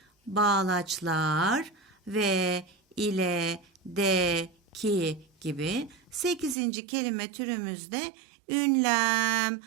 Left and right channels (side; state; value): left; drops out; at 6.6 s